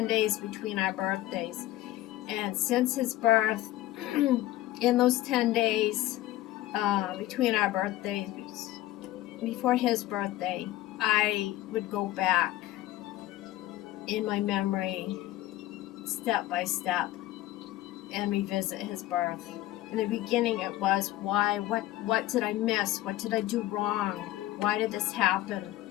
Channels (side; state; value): right; quieter; 15.7 dB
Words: days between our birthdays. And since his birth, in those 10 days between our birthdays, before his birthday, I would go back in my memory, step by step, and revisit his birth. In the beginning, it was why, what did I miss? What did I do wrong? Why did this happen?